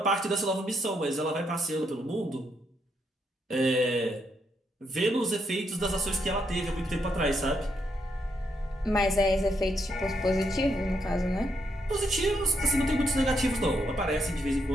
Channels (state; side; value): normal; both; correlation 0.78